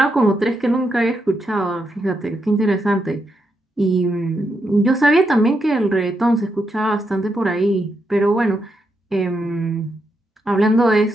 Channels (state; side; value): normal; both; correlation 0.82